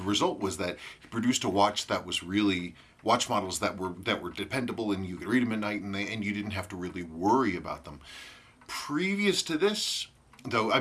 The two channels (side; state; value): both; identical; correlation 1.00